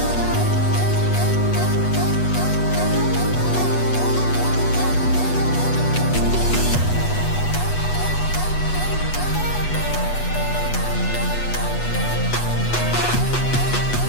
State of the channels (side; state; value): right; late; 8.2 ms